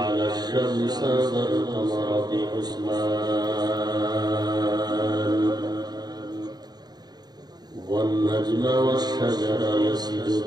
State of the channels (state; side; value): late; left; 0.20 ms